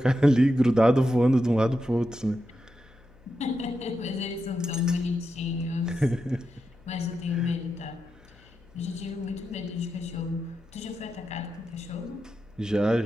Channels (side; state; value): left; noise; hum, 26 dB below the sound